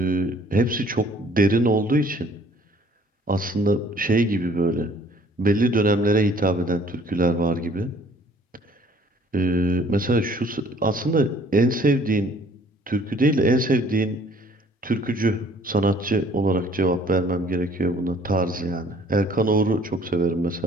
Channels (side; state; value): both; normal; correlation 0.57